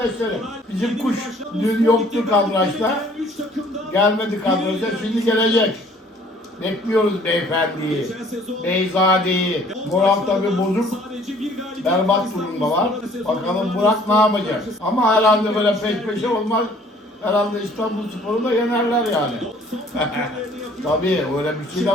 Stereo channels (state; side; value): normal; both; correlation 0.56